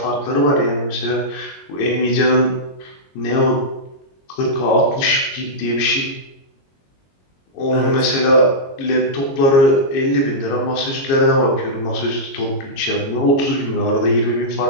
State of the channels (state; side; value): late; right; 22 ms